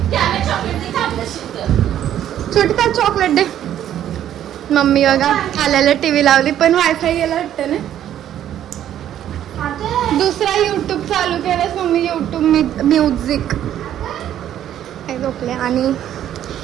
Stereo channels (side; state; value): left; quieter; 11.1 dB